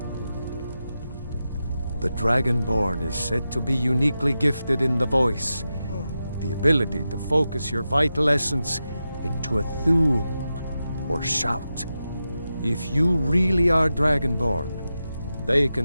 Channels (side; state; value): both; inverted; correlation -0.91